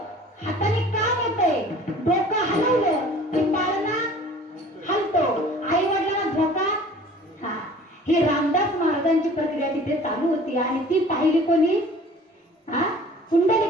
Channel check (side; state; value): both; normal; correlation 0.47